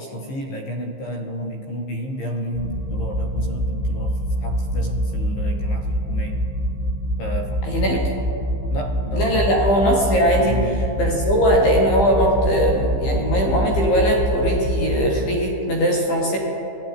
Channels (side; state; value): right; late; 15 ms